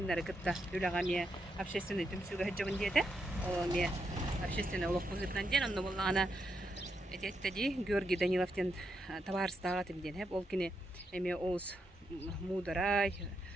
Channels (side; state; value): both; normal; correlation 0.82